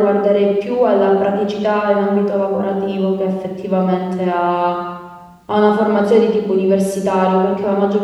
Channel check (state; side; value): identical; both; correlation 1.00